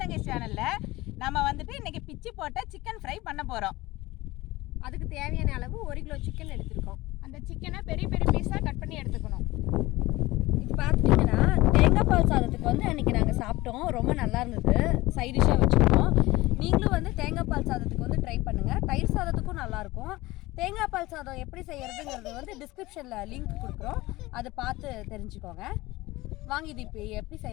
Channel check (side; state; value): right; quieter; 19.5 dB